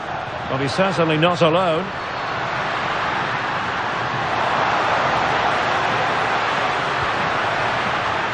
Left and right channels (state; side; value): noise; left; rumble, 28 dB below the sound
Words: Well, he's certainly not alone.